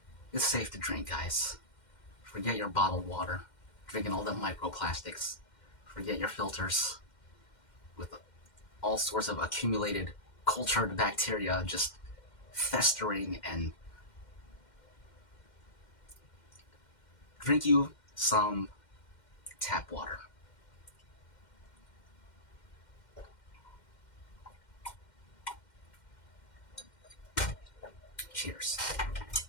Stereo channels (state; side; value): late; right; 2.1 ms